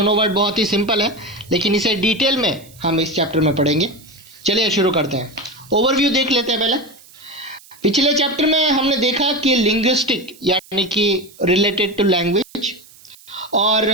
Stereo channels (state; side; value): noise; right; hiss, 24 dB below the sound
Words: वर्ड बहुत ही सिंपल है, लेकिन इसे डिटेल में हम इस चैप्टर में पढ़ेंगे। चलिए शुरू करते हैं। ओवरव्यू देख लेते हैं पहले। पिछले चैप्टर में हमने देखा कि लिंग्विस्टिक यानी कि रिलेटेड टू लैंग्वेज